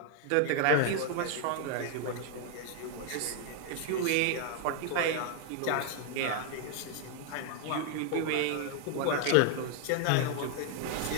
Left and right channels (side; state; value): both; different; correlation 0.00